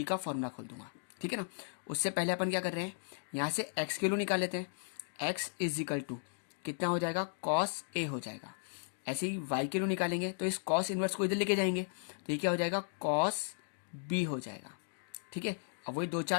का फॉर्मूला खोल दूंगा, ठीक है ना। उससे पहले अपन क्या कर रहे हैं, यहां से एक्स की वैल्यू निकाल लेते हैं। एक्स इज इक्वल टू कितना हो जाएगा, कॉस ए हो जाएगा। ऐसे ही वाई की वैल्यू निकालेंगे तो इस कॉस इनवर्स को इधर लेके जाएंगे तो ये क्या हो जाएगा, कॉस बी हो जाएगा, ठीक है। अब वही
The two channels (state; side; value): silent; right; digital silence